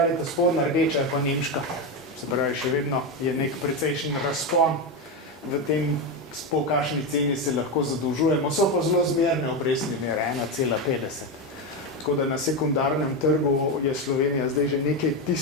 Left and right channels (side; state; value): both; normal; correlation 0.12